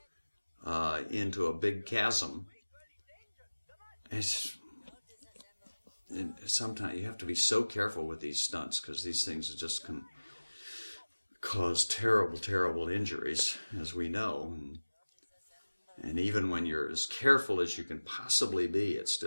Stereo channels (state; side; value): inverted; both; correlation -1.00